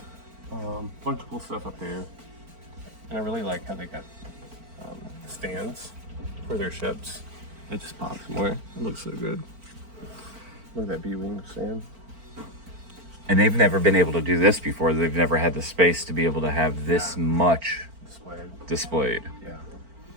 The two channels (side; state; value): left; late; 4.4 ms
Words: Bunch of cool stuff up there. And I really like how they got stands for their ships. It just pops more. It looks so good. Look at that B-wing stand. And they've never been able to do this before. They've never had the space to be able to have this much displayed. Yeah.